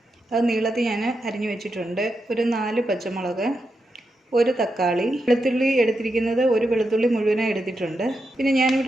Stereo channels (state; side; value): normal; both; correlation 0.86